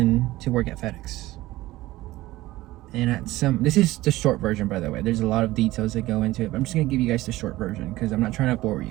to work at FedEx. And this is the short version, by the way. There's a lot of details that go into it, but I'm just going to give you guys the short version because I'm not trying to bore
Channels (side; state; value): left; quieter; 17.4 dB